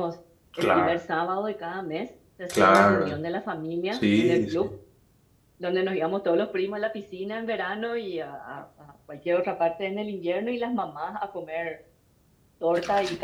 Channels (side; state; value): both; identical; correlation 1.00